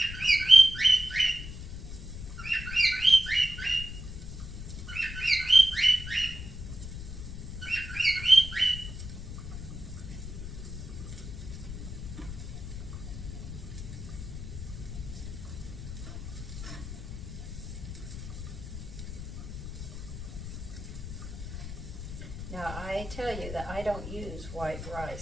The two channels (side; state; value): left; noise; rumble, 9 dB below the sound